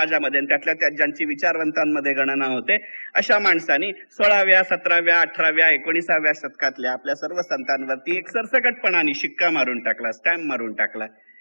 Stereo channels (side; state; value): both; inverted; correlation -1.00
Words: त्यातल्या त्यात ज्यांची विचारवंतांमध्ये गणना होते अशा माणसांनी 16व्या 17व्या 18व्या 19व्या शतकातल्या आपल्या सर्व संतांवरती एक सरसगटपणाने शिक्का मारून टाकला, स्टॅम्प मारून टाकला